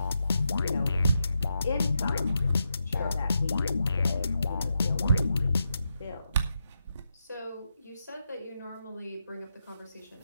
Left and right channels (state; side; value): inverted; both; correlation -0.85